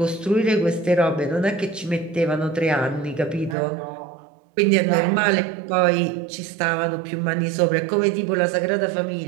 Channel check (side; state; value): left; drops out; at 3.6 s